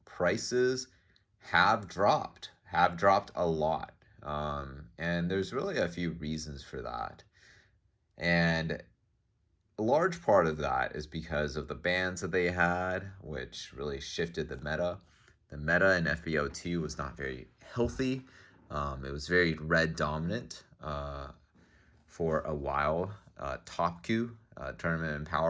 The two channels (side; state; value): both; identical; correlation 1.00